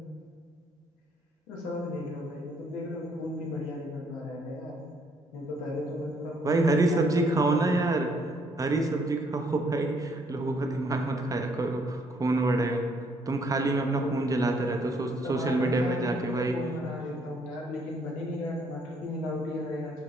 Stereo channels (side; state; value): both; normal; correlation 0.68